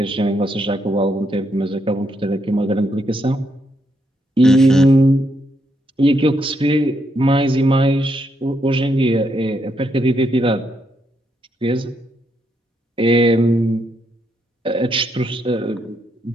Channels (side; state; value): both; normal; correlation 0.78